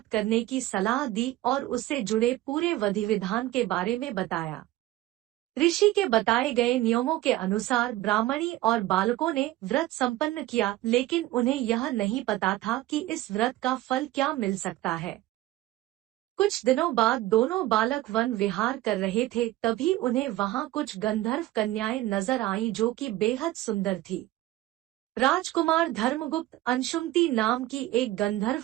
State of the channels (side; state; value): left; quieter; 16.2 dB